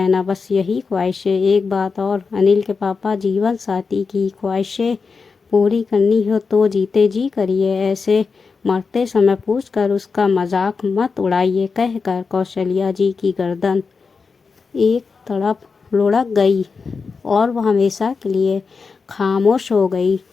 बस यही ख्वाहिशें। एक बात और, अनिल के पापा, जीवन साथी की ख्वाहिशें पूरी करनी हो तो जीते जी करिए, ऐसे मरते समय पूछकर उसका मजाक मत उड़ाइए। कहकर कौशल्या जी की गर्दन एक तरफ लुढ़क गई और वह हमेशा के लिए खामोश हो गई।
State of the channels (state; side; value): quieter; right; 4.9 dB